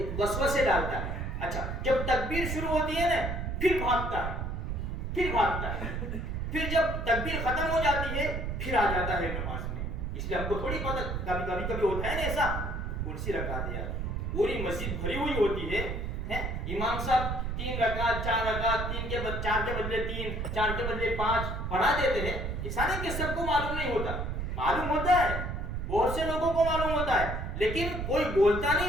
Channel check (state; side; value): noise; right; rumble, 3 dB below the sound